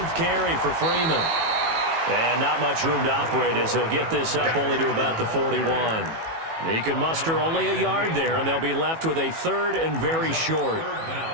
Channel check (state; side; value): late; left; 18 ms